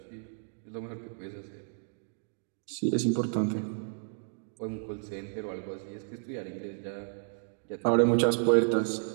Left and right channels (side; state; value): left; silent; digital silence